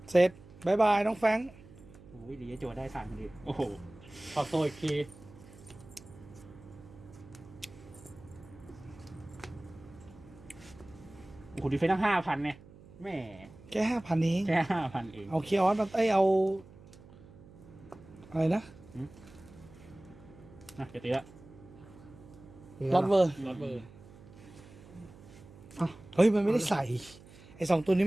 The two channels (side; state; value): right; noise; hum, 21 dB below the sound